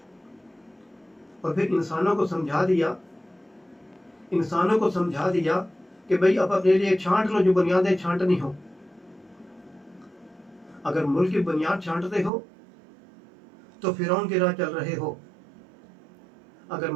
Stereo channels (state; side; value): drops out; left; at 12.3 s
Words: اور پھر انسانوں کو سمجھا دیا کہ بھئی اب اپنے لیے چھانٹ لو جو بنیادیں چھانٹنی ہو. اگر ملک کی بنیاد چھانٹتے ہو تو فرعون کی راہ چل رہے ہو، اگر